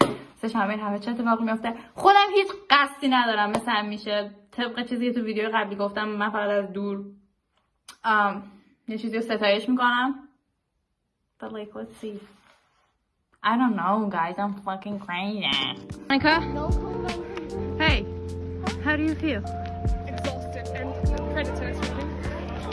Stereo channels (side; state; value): both; identical; correlation 1.00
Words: همه چه اتفاقی میفته. خودم هیچ قصدی ندارم، مثل همیشه طبق چیزی که تو ویدیو قبلی گفتم من فقط از دور یه چیزی رو ستایش میکنم. But like let's see. I don't know guys, I'm fucking crazy. Monica? No, Hey, how do you feel? exhausted and predators really.